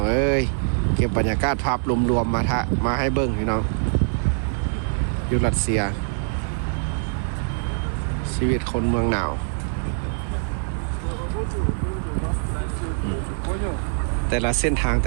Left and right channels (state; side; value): silent; left; digital silence